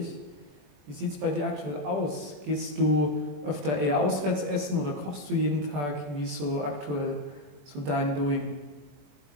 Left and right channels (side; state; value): left; late; 21 ms